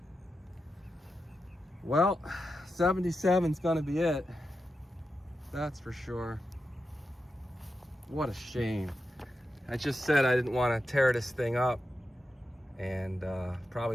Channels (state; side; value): normal; both; correlation 0.89